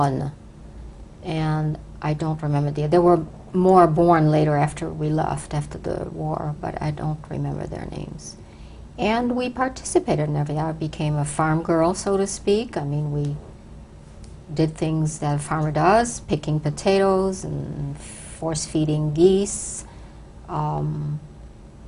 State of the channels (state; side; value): identical; both; correlation 1.00